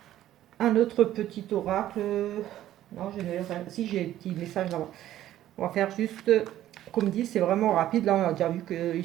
un autre petit oracle. Non, je n'ai rien. Si, j'ai un petit message là-bas. On va faire juste, comme dit, c'est vraiment rapide. Là, on a déjà vu qu'il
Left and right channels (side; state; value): left; quieter; 13.0 dB